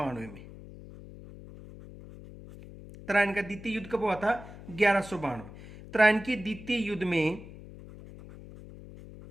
में। त्राइन का द्वितीय युद्ध कब हुआ था? 1192। त्राइन के द्वितीय युद्ध में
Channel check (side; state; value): left; noise; hum, 16 dB below the sound